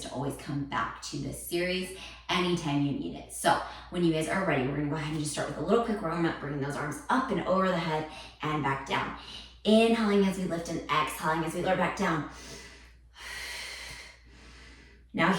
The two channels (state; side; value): identical; both; correlation 1.00